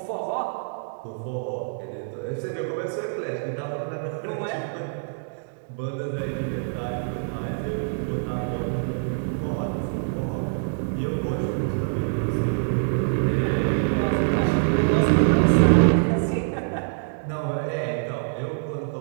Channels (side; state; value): left; silent; digital silence